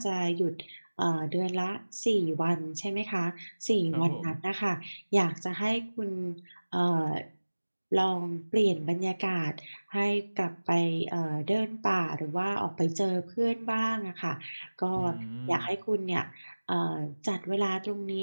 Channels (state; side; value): inverted; both; correlation -1.00